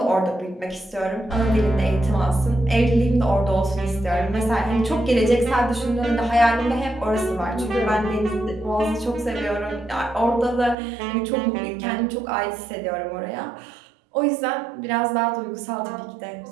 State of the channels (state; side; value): drops out; left; at 10.8 s